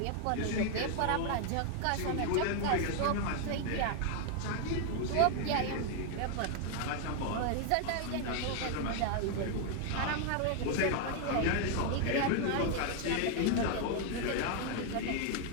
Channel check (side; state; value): both; different; correlation 0.00